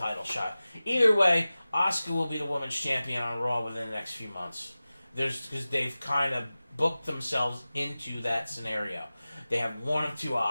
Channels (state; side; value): inverted; both; correlation -0.97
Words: shot? Either way, Asuka will be the women's champion on Raw within the next few months. Because they've kind of booked themselves into that scenario. They have one of two